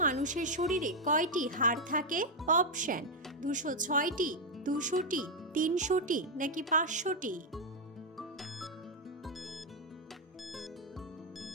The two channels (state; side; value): normal; both; correlation 0.02